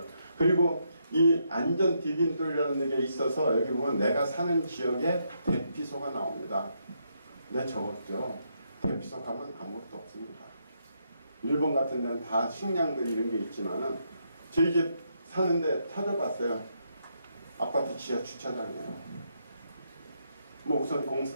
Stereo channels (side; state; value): both; inverted; correlation -0.78